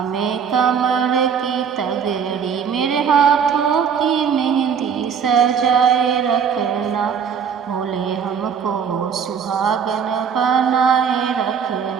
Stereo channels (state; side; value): quieter; left; 7.0 dB